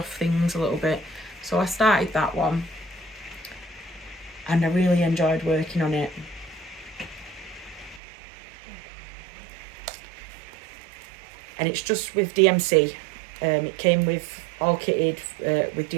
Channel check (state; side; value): drops out; left; at 8.0 s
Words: things a little bit. So I started that one. And I really enjoyed working on it. And it's just with DMC. It came with all kitted with